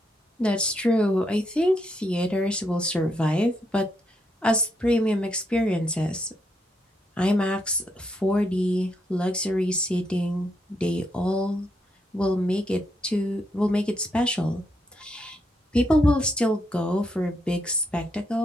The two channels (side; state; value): both; normal; correlation 0.78